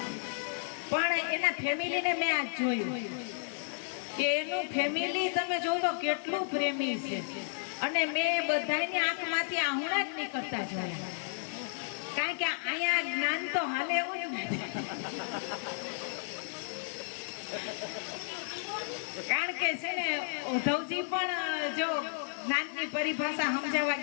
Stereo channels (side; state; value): right; silent; 56 dB below the other